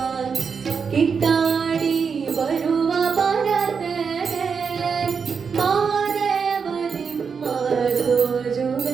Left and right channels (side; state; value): left; quieter; 5.9 dB